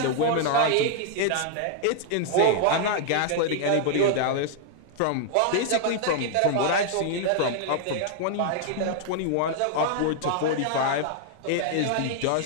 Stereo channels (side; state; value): both; different; correlation -0.01